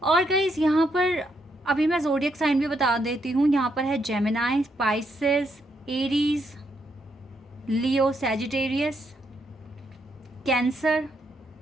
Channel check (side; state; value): both; normal; correlation 0.77